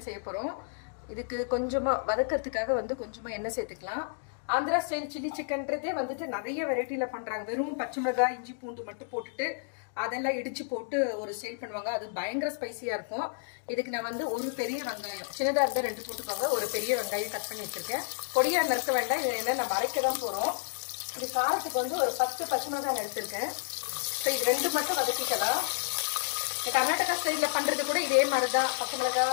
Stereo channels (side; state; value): right; silent; digital silence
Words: செய்ய போகிறோம். இதுக்கு கொஞ்சமாக வதக்கிறதுக்காக கொஞ்சமாக எண்ணெய் சேர்த்துக்கலாம். ஆந்திரா ஸ்டைல் சில்லி சிக்கன்றதே நிறைய வெரைட்டியில் பண்ணுறாங்க. வெறும் பச்சை மிளகாய், இஞ்சி, பூண்டு மட்டும் போட்டுட்டு அதெல்லாம் இடித்து போட்டு ஒரு ஸ்டைல் பண்ணுவாங்க. அது பயங்கர ஸ்பைசியாக இருக்கும். இதுக்கு நான் ஒரு பெரிய வெங்காயம், சின்னதாக இருந்தால் 2 போட்டுக்கோங்க. ஒரு பெரிய வெங்காயம் கட் பண்ணி வச்சுருக்கேன். பொடியாக நறுக்க வேண்டாம், இது என்ன நம்ம அரைக்க தான் போகிறோம். இது காரத்துக்கு ஒரு 10 பச்சை மிளகாய் எடுத்துருக்கேன். ஸோ இது 2 மட்டும் வதக்கிக்கலாம். கர்நாடகா ஸ்டைலில் பண்ணுறது கூட இதே மாதிரி தான். பச்சை